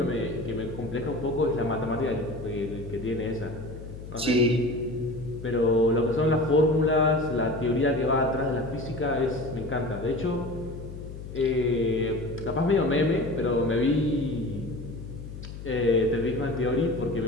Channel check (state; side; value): noise; left; hum, 11 dB below the sound